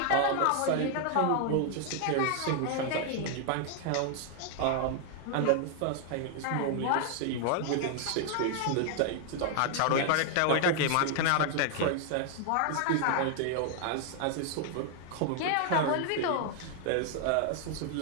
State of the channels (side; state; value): both; different; correlation 0.00